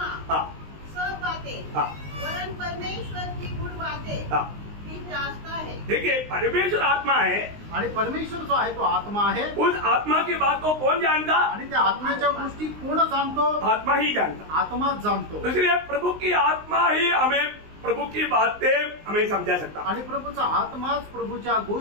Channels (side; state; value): left; late; 19 ms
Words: सब बातें वरन परमेश्वर की गुण बातें भी जांचता है। देखिए, परमेश्वर आत्मा है, आणि परमेश्वर जो आहे तो आत्मा आहे। उस आत्मा की बात को कौन जानता, आणि त्या आत्म्याच्या गोष्टी कोण जाणतो, आत्मा ही जानता, आत्माच जाणतो। इसलिए प्रभु की आत्मा ही हमें प्रभु की बातें हमें समझा सकता, आणि प्रभूचा आत्माच प्रभूच्या